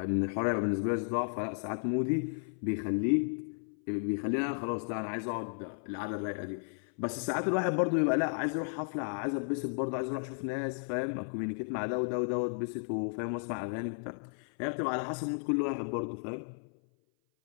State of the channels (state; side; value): silent; right; 55 dB below the other